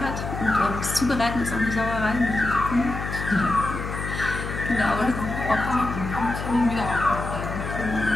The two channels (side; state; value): left; noise; hum, 6 dB below the sound